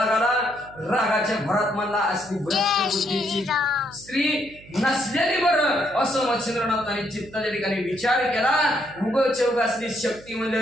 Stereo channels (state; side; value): noise; right; hum, 22 dB below the sound